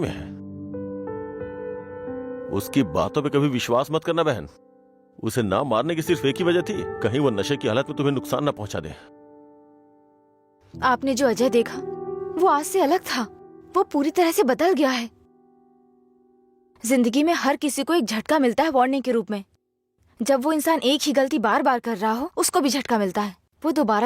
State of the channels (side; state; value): both; identical; correlation 1.00